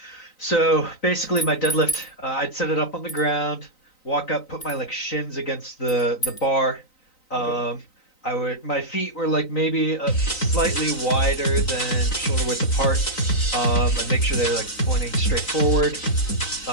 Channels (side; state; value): right; late; 3.9 ms